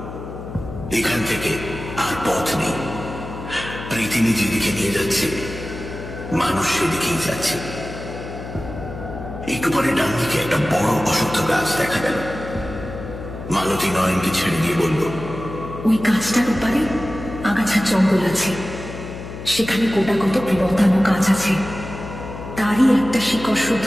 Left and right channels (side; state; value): left; noise; hum, 10 dB below the sound